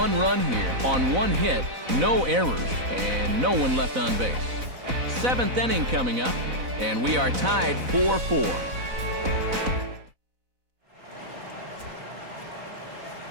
run here on 1 hit, no errors, and no one left on base. 7th inning coming up, and we are tied 4-4.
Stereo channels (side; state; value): left; late; 4.0 ms